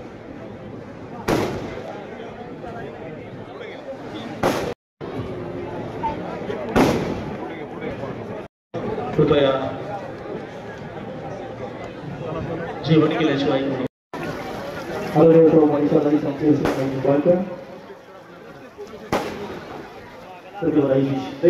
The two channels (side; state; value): both; identical; correlation 1.00